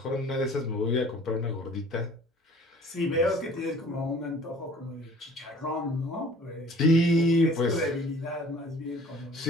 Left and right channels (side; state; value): both; normal; correlation 0.50